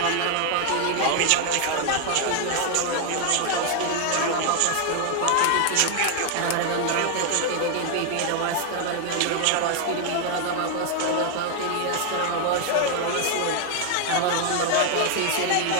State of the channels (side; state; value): both; different; correlation 0.00